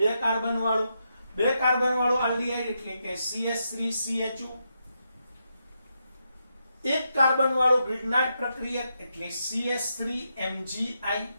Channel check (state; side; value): inverted; both; correlation -0.83